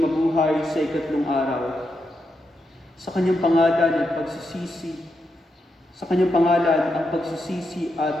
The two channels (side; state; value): both; normal; correlation 0.84